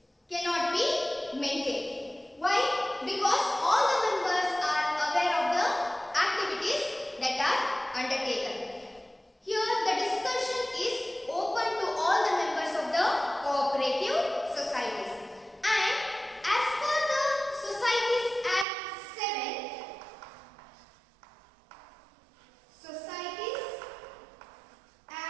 cannot be maintained. Why? Because all the members are aware of the activities that are undertaken. Here, the discussion is open to all the members of the cooperative societies. And as per the Societies Act 7, Societies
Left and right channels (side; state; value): left; drops out; at 18.7 s